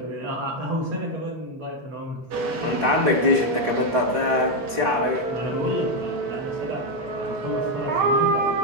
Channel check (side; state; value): left; late; 3.8 ms